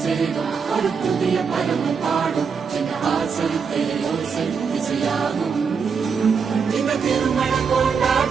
சேரும் ஒரு புதிய பருவம் பாடும் சின்ன ஆசை பெரியோசை இசையாகும் இந்த திருமண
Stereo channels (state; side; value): quieter; left; 5.9 dB